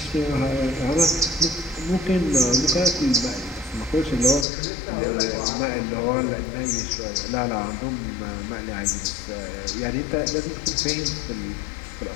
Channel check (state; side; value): drops out; right; at 4.5 s